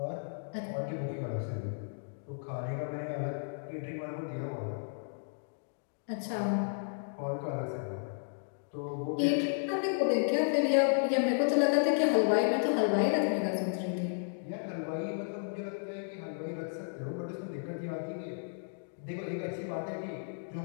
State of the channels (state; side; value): silent; right; digital silence